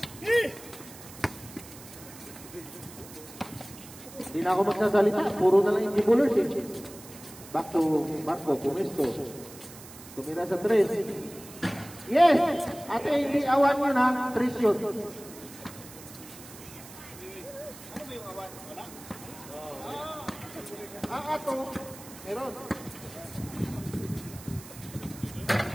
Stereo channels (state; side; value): noise; right; hiss, 17 dB below the sound